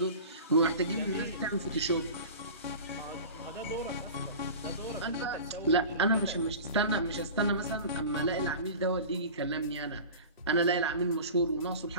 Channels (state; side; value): inverted; both; correlation -0.36